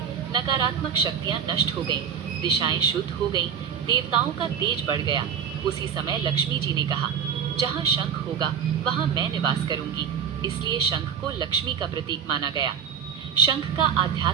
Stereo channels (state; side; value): quieter; left; 7.5 dB